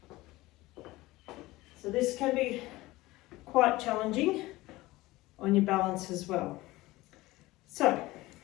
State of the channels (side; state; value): right; quieter; 19.1 dB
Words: So this can be quite challenging on your balance as well. So,